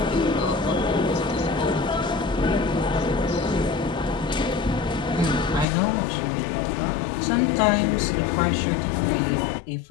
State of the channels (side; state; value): right; drops out; at 5.7 s